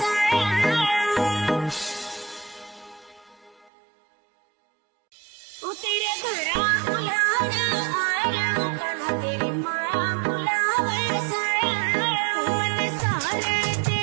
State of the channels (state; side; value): drops out; left; at 3.7 s